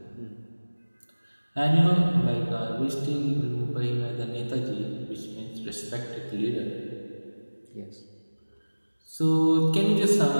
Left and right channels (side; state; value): both; inverted; correlation -1.00